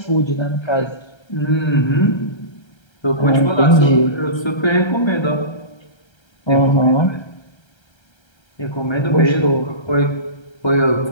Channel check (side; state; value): right; late; 1.3 ms